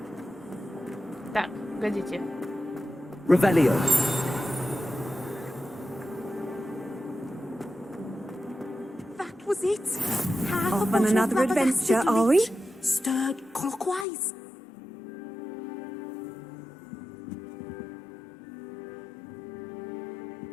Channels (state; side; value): drops out; right; at 14.1 s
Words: Так, погодите. Revelio. That was it. Off on another adventure, are we? Stirred clockwise.